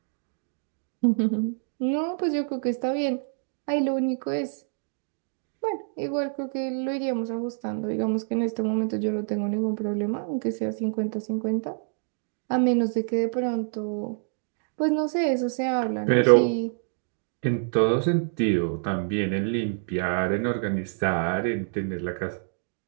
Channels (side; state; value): left; silent; digital silence